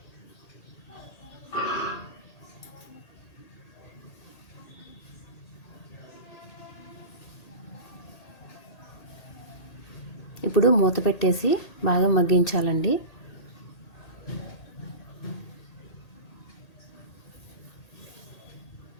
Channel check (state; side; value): late; right; 1.8 ms